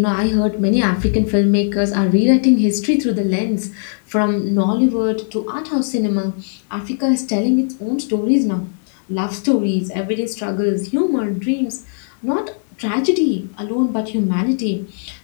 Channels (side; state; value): right; silent; digital silence